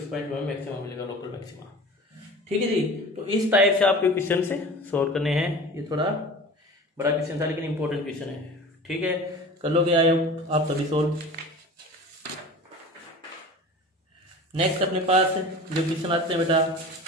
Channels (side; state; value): both; normal; correlation 0.37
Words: पॉइंट में मैक्सिमम मिलेगा, लोकल मैक्सिमा। ठीक है जी, तो इस टाइप से आपके क्वेश्चन से सॉल्व करने हैं। ये थोड़ा बड़ा क्वेश्चन था लेकिन इंपॉर्टेंट क्वेश्चन है। ठीक है, कर लोगे आप सभी सॉल्व। नेक्स्ट अपने पास जो क्वेश्चन आते हैं बेटा